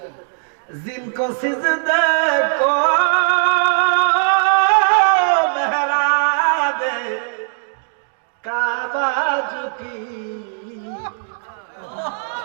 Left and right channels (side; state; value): left; silent; digital silence